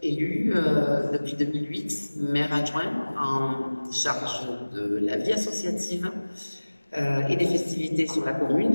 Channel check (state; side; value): inverted; both; correlation -1.00